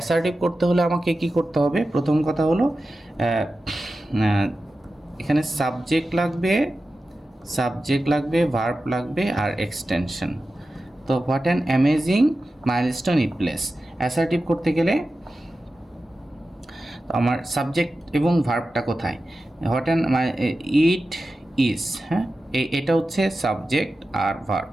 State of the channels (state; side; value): normal; both; correlation 0.93